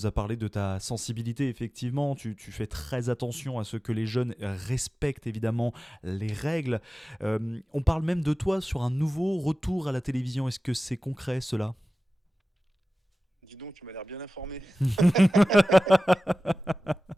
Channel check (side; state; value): both; normal; correlation 0.96